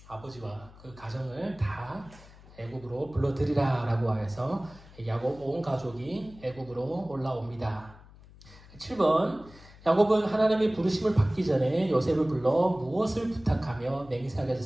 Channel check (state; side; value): noise; left; hum, 22 dB below the sound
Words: 아버지와 그 가정을 다 애굽으로 불러들이라 라고 해서 야곱 온 가족이 애굽으로 올라옵니다. 7번 야곱은 하나님의 부르심을 받기 전에 요셉을 불러 무엇을 부탁하며